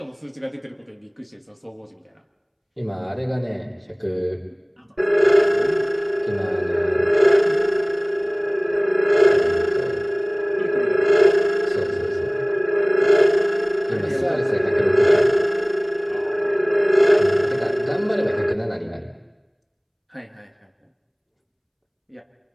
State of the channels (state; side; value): identical; both; correlation 1.00